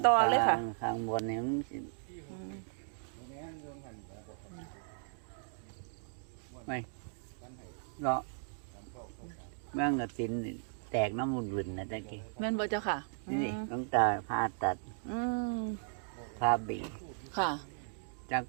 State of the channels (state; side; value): silent; left; digital silence